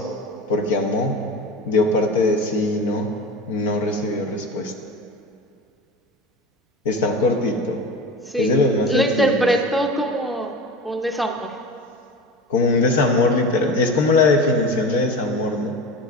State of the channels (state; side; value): normal; both; correlation 0.30